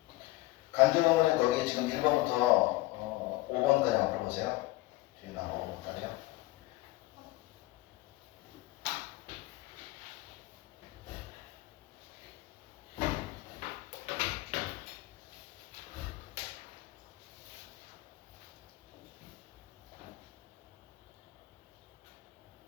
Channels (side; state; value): right; quieter; 19.1 dB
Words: 간접어머니 거기 지금 1번부터 5번까지 한번 풀어보세요. 뒤에 나와 5번까지요.